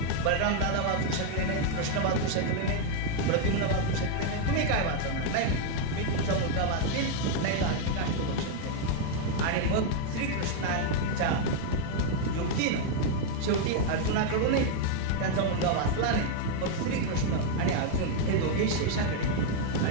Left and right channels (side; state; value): both; different; correlation 0.00